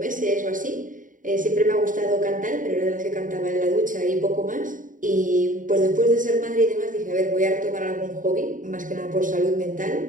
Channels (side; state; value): left; late; 0.38 ms